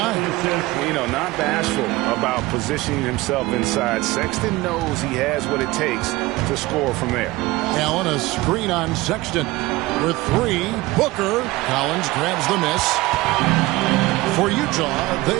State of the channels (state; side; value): quieter; left; 19.8 dB